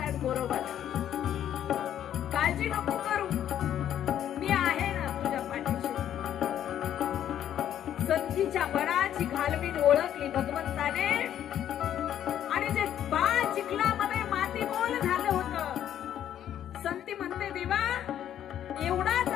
गोरोबाला. घातली भगवंताने आणि जे बाळ चिखलामध्ये मातीमोल झालं होतं, संती म्हणते देवा एवढाच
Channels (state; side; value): quieter; right; 10.6 dB